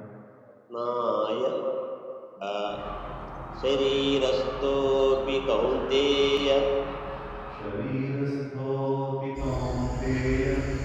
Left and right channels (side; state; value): both; identical; correlation 1.00